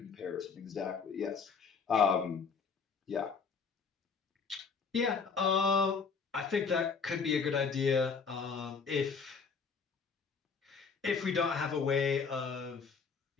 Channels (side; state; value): right; quieter; 5.4 dB